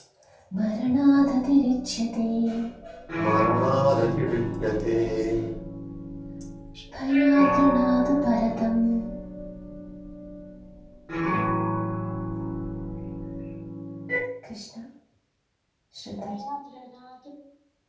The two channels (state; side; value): identical; both; correlation 1.00